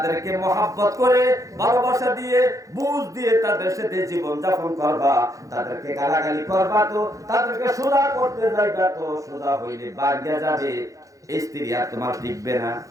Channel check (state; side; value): late; left; 0.16 ms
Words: মহাব্বত করে ভালোবাসা দিয়ে বুঝ দিয়ে তাদের সাথে জীবন যাপন করবা। তাদেরকে গালাগালি করবা তো, তাদেরকে সোজা করতে যাইবা তো, সোজা হইলে ভাঙা যাবে। স্ত্রী আর তোমার টিকবে না।